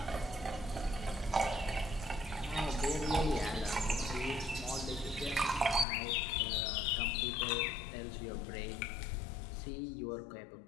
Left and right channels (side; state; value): right; drops out; at 5.9 s